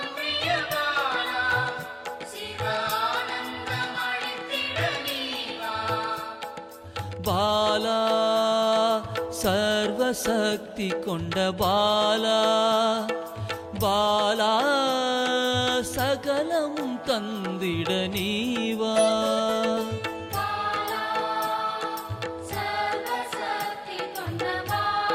பாலா சர்வசக்தி கொண்ட பாலா, பாலா சகலமும் தந்திட நீவா.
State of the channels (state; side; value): identical; both; correlation 1.00